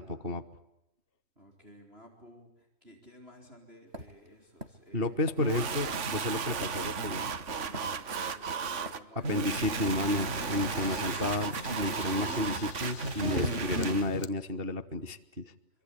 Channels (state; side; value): late; left; 3.5 ms